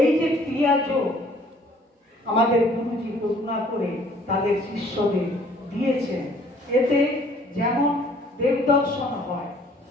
এই যে ক্রিয়া যোগ আমাদের গুরুজি করুণা করে তাদের শিষ্যদের দিয়েছেন, এতে যেমন দেবদর্শন হয়,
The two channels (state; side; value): normal; both; correlation 0.57